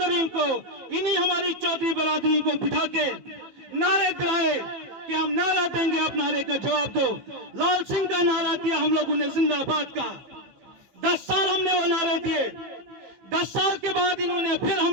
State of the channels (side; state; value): left; late; 15 ms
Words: को, इन्हीं हमारी चौधरी बरादरी को बिठा के नारे दिलाए कि हम नारा देंगे, आप नारे का जवाब दो। लाल सिंह का नारा दिया हम लोगों ने, जिंदाबाद का। 10 साल हमने वो नारे दिए। 10 साल के बाद इन्होंने फिर